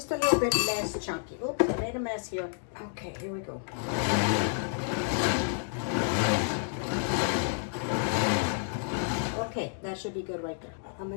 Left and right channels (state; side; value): silent; right; digital silence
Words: a little bit less chunky. Oops, I made a mess here. Okay, here we go. Okay, that should be good right there. I'm